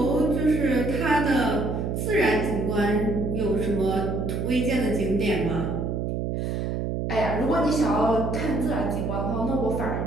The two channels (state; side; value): noise; right; hum, 1 dB below the sound